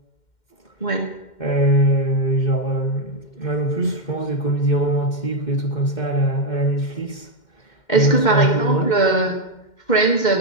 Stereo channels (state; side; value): late; right; 2.1 ms